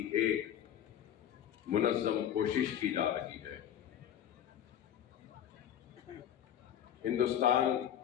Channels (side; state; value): right; quieter; 10.3 dB